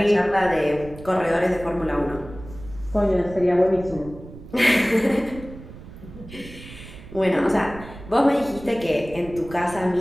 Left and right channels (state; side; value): noise; right; rumble, 16 dB below the sound